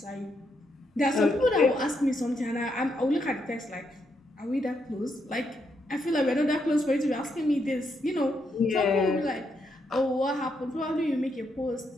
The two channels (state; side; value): normal; both; correlation 0.79